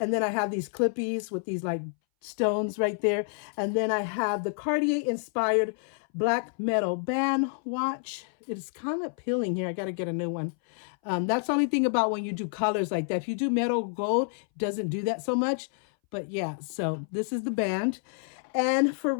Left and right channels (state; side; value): silent; right; 59 dB below the other